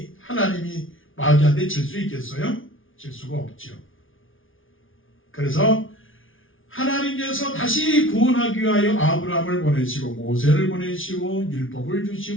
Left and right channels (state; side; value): late; right; 0.58 ms